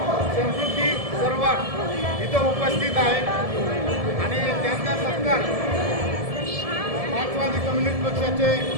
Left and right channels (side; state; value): left; late; 1.7 ms